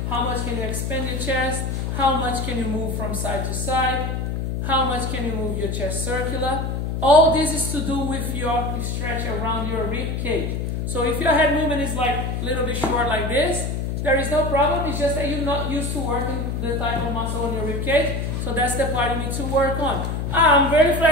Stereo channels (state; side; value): noise; left; hum, 2 dB below the sound